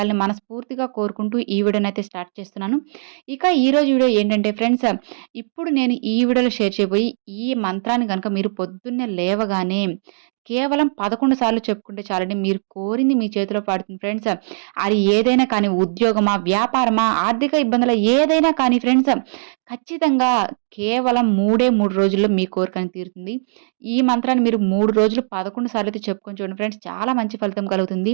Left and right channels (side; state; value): left; silent; digital silence